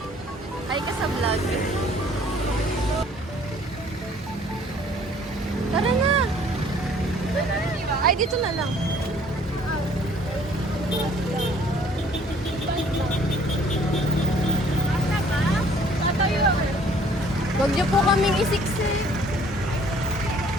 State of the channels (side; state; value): both; normal; correlation 0.57